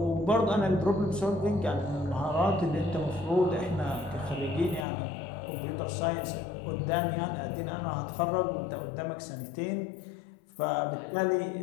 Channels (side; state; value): right; drops out; at 4.9 s